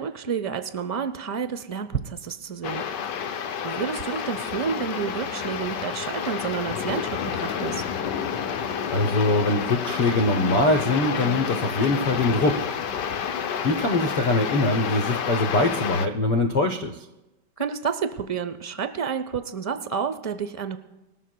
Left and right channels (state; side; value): late; right; 5.2 ms